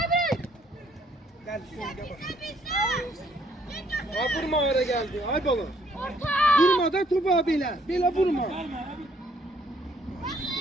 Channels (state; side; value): normal; both; correlation 0.66